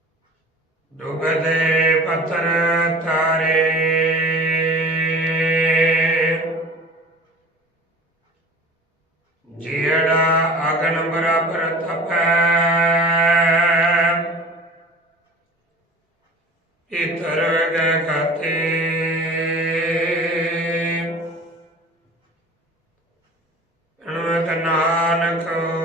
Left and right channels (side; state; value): both; normal; correlation 0.40